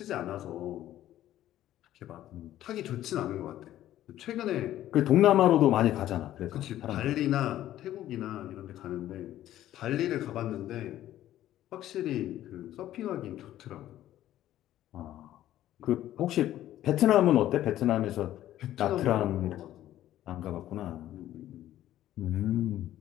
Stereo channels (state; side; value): quieter; right; 13.1 dB